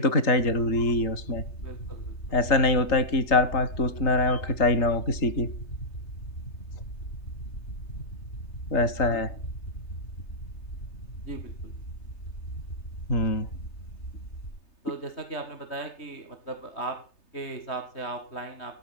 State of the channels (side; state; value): right; late; 3.3 ms